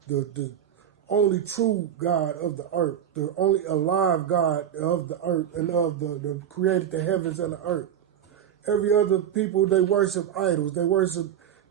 the only true God of the earth, the only alive God of the earth and of the created the heavens and the earth. Every other people, they worship idols. They worship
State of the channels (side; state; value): left; quieter; 9.5 dB